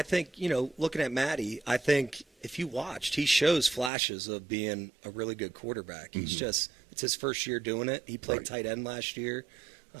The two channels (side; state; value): left; drops out; at 3.9 s